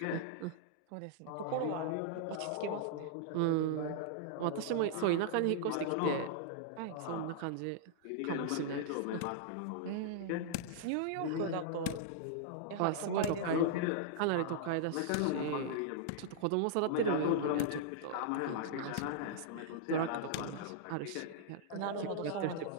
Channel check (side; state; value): both; different; correlation -0.01